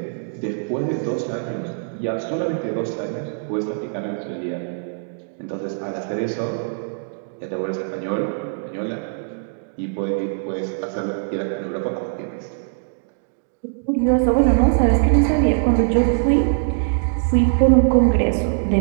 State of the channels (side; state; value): left; silent; digital silence